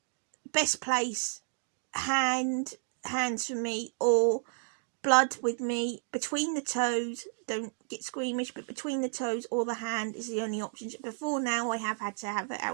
Best place, hands for me, or blood with me between the toes. Don't get squeamish, but between the toes or the hand is the only option. Before now, I have had to have it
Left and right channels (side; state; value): left; silent; 57 dB below the other